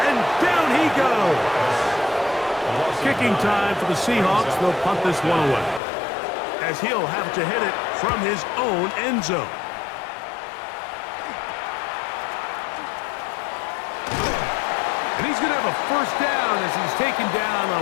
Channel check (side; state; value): right; drops out; at 5.8 s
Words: and down he goes. Kicking time for the Seahawks. They'll punt this one away, as he'll have to hit it from his own end zone. And he's going to have a first down as he's taken down